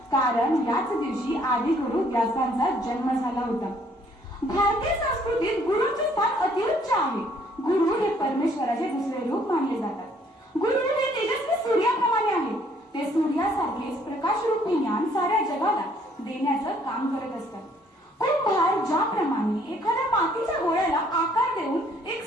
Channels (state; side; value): normal; both; correlation 0.63